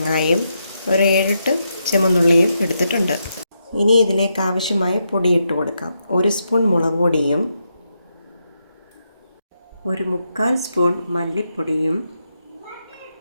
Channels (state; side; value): inverted; both; correlation -0.82